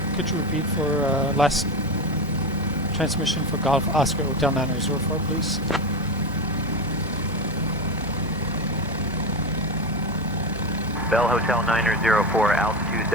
Could you repeat for last transmission for Golf Oscar Hotel 904, please? Bell Hotel 904, altitude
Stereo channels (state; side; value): normal; both; correlation 0.19